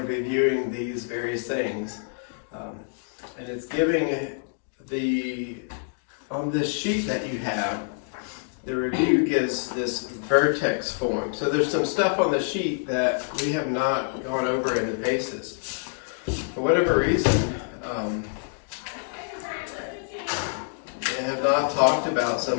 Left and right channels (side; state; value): right; silent; digital silence